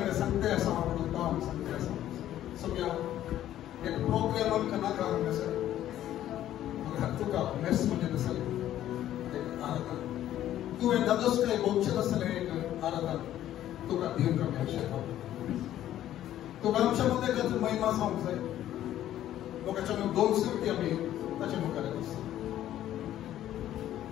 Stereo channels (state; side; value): quieter; right; 12.4 dB